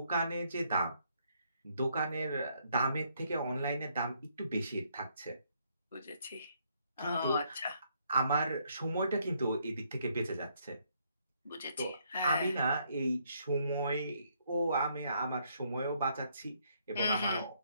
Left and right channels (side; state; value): both; inverted; correlation -0.71